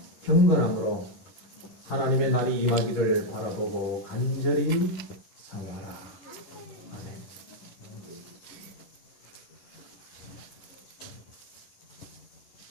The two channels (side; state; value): right; late; 11 ms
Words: 경건함으로 하나님의 날이 임하기를 바라보고 간절히 사모하라. 아멘.